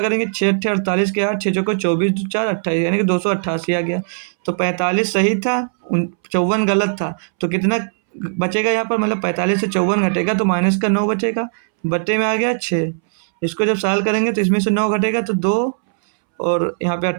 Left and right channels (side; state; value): left; silent; 67 dB below the other